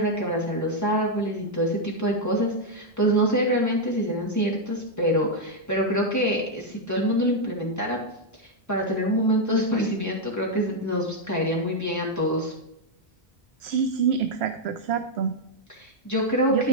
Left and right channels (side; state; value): both; normal; correlation -0.01